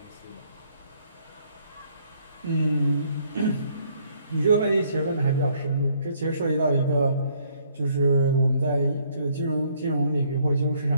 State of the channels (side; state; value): both; inverted; correlation -0.66